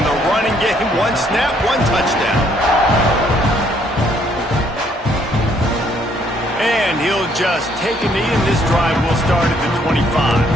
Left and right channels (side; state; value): both; normal; correlation 0.67